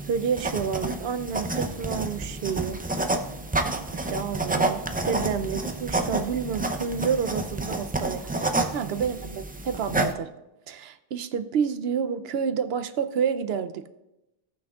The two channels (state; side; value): quieter; left; 4.3 dB